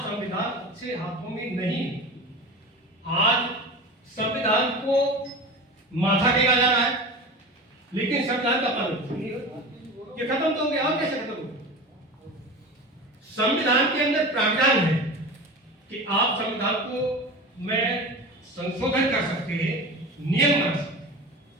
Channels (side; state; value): both; normal; correlation 0.31